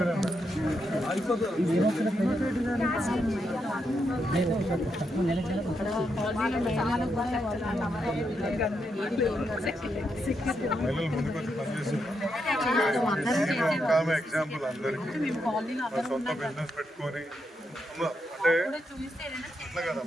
మహిళలు ముందుకు వచ్చి పనిచేస్తారు. ఒక ఆమె ఎగ్జాంపుల్ అందరికీ సొంత బిజినెస్ పెట్టుకొని అంటే అట్లా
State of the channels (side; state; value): both; normal; correlation 0.82